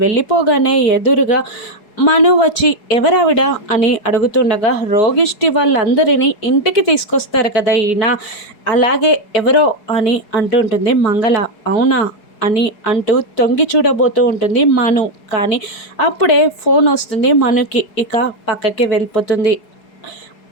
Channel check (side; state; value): right; late; 4.7 ms